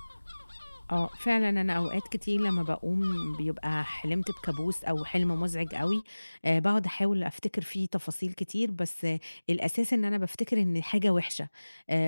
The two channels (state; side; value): inverted; both; correlation -1.00